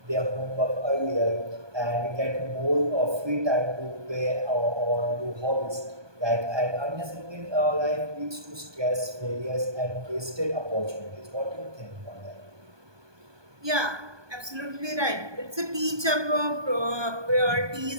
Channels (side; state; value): left; late; 1.2 ms